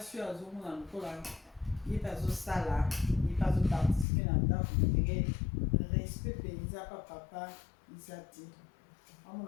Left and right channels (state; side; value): drops out; right; at 4.0 s